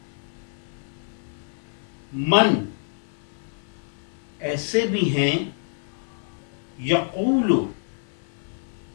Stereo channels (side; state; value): right; silent; 57 dB below the other